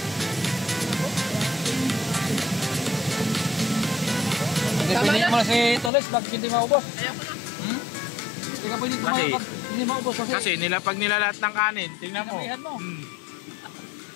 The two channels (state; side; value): drops out; right; at 5.9 s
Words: Pinilit mo na si Toles, bakit hindi maubos? Ayoko na. Hindi ka pwede Kasi- tumayo pag hindi maubos kasi. Kasi pag nilalat ng kanin, tingnan mo. Sinabihan mo.